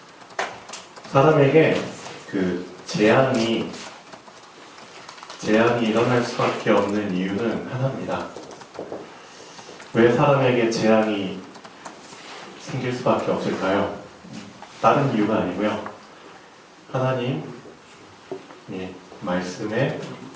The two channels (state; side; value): identical; both; correlation 1.00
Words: 사람에게 재앙이 일어날 수밖에 없는 이유는 하나입니다. 왜 사람에게 재앙이 생길 수밖에 없을까요? 다른 이유가 아니고요. 하나님 말씀에